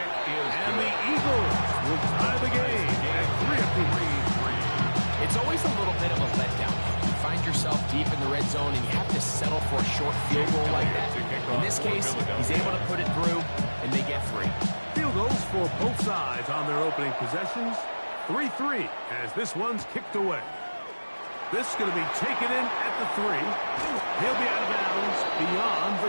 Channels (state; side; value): inverted; both; correlation -1.00